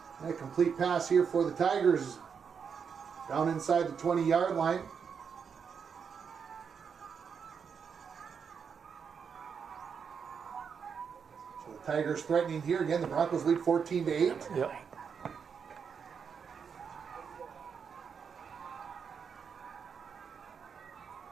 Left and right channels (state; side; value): quieter; left; 6.6 dB